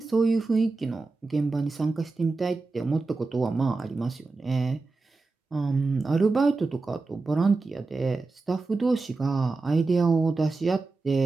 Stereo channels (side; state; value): left; quieter; 3.7 dB